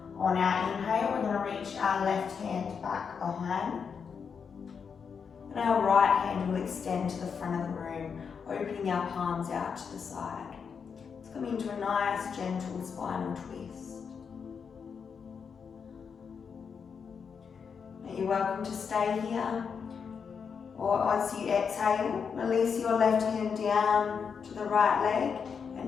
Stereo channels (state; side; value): quieter; right; 6.3 dB